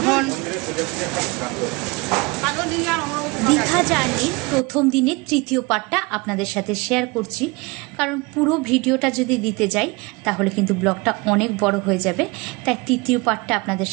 এখন দীঘা জার্নির প্রথম দিনের তৃতীয় পার্টটা আপনাদের সাথে শেয়ার করছি, কারণ পুরো ভিডিওটা যদি দিতে যাই তাহলে কিন্তু ব্লগটা অনেক বড় হয়ে যাবে। তাই তৃতীয় পার্টটা আপনাদের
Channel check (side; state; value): left; quieter; 25.8 dB